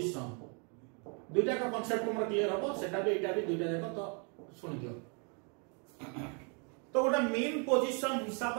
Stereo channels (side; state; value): left; quieter; 37.5 dB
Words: दुईटा का concept हमर clear हो सेटा भी एटा भी दुईटा देखो तो सुन दियो तो गोटे मेन पोजीशन हिसाब